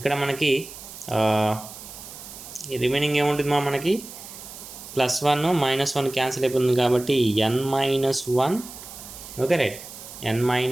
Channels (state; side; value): noise; right; hiss, 14 dB below the sound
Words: మనకి రిమైనింగ్ ఏముంటుంది మనకి +1 -1 క్యాన్సిల్ అయిపోతుంది కాబట్టి n-1, okay right,